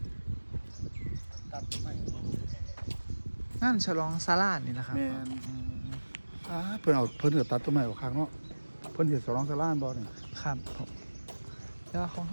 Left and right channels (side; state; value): both; inverted; correlation -1.00